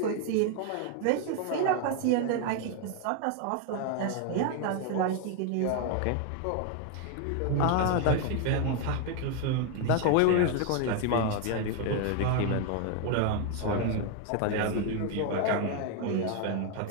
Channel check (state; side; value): different; both; correlation 0.01